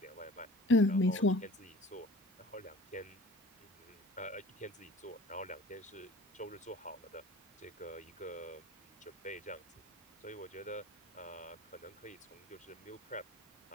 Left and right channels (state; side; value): normal; both; correlation 0.45